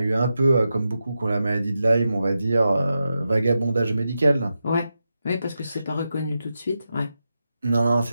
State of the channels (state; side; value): inverted; both; correlation -0.89